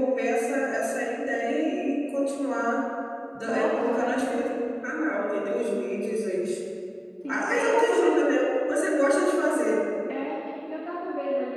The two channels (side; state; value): both; identical; correlation 1.00